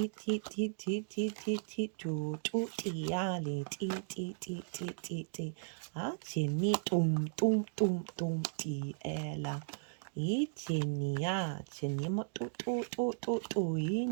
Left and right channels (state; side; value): silent; left; digital silence